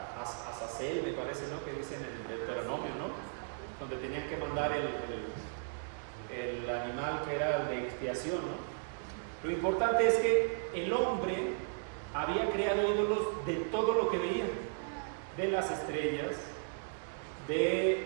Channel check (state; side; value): silent; left; digital silence